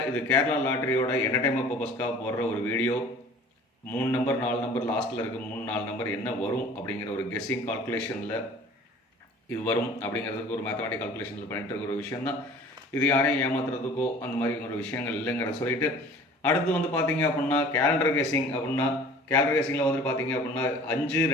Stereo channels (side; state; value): both; normal; correlation 0.47